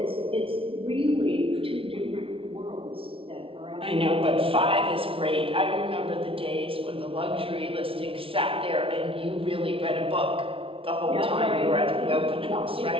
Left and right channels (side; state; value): left; late; 0.26 ms